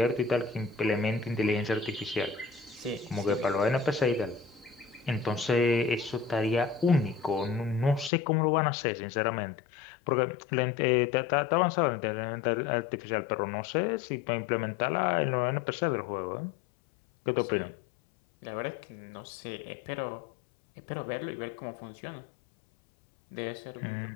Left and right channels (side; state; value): right; drops out; at 8.1 s